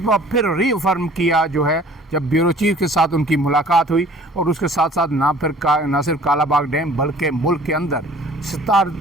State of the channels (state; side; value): normal; both; correlation 0.51